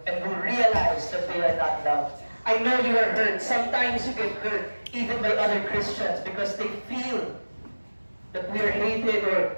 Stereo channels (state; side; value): inverted; both; correlation -1.00